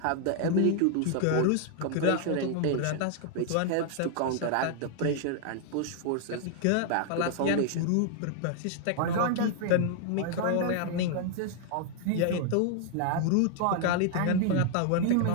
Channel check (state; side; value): different; both; correlation 0.00